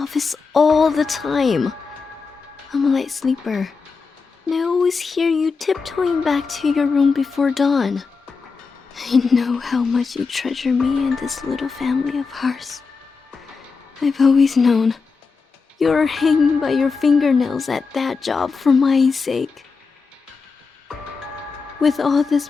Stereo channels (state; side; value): quieter; right; 4.8 dB